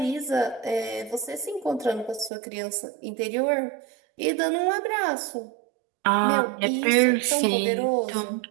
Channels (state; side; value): drops out; left; at 2.3 s